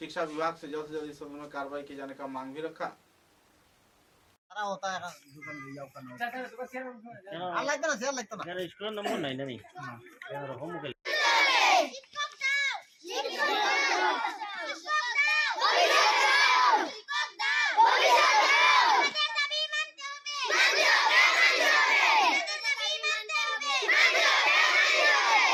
विभाग से जल्द इस संबंध में कार्रवाई किए जाने का मांग भी रखा। होता है दुकान ले जाओ करना लगता ना शेयर लगता ना यार स्कूल नंबर नहीं नहीं यार होम के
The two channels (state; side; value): identical; both; correlation 1.00